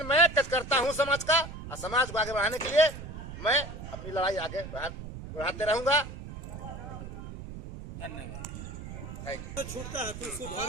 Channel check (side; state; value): right; noise; rumble, 10 dB below the sound